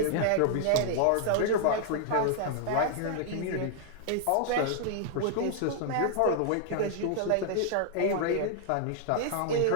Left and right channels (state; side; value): different; both; correlation -0.01